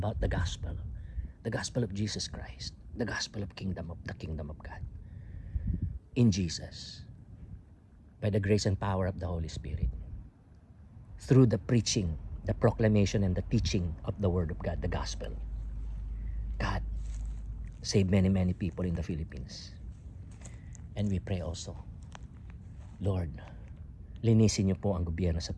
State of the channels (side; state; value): both; identical; correlation 1.00